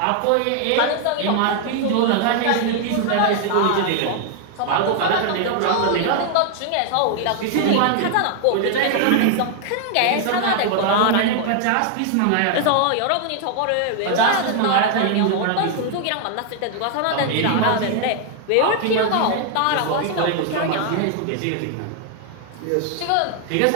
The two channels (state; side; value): different; both; correlation 0.00